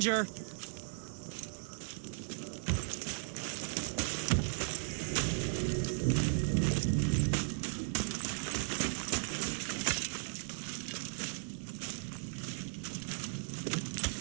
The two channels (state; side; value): silent; left; 53 dB below the other